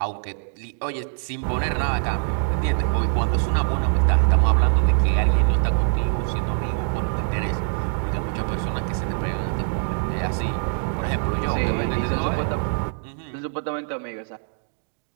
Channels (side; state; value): left; silent; 63 dB below the other